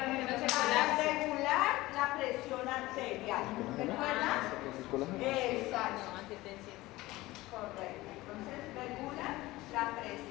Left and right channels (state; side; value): quieter; right; 18.8 dB